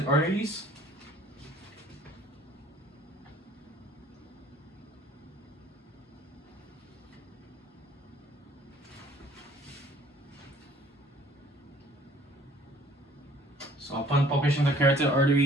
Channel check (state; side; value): normal; both; correlation 0.55